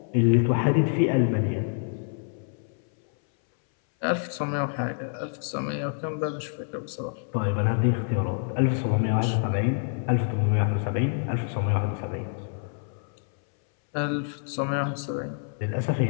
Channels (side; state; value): right; silent; 60 dB below the other